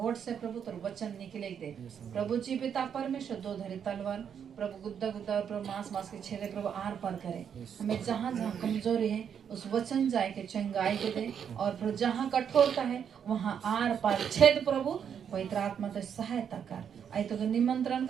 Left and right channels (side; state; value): left; quieter; 7.9 dB